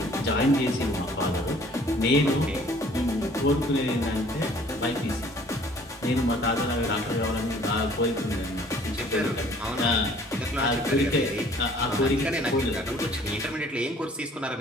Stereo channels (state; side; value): normal; both; correlation 0.55